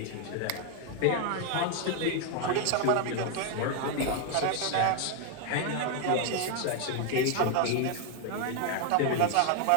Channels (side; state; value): both; different; correlation 0.01